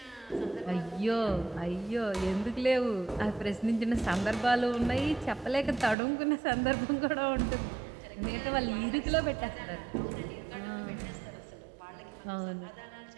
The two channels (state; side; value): drops out; left; at 6.0 s